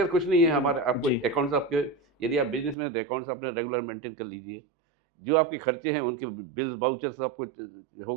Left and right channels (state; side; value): drops out; left; at 2.8 s